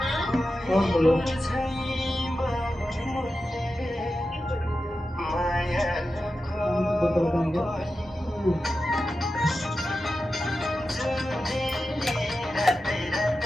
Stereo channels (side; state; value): both; normal; correlation 0.92